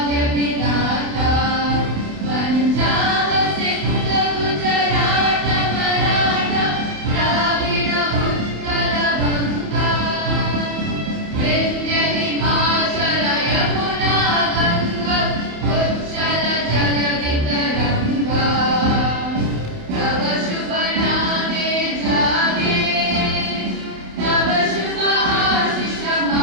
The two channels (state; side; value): late; left; 28 ms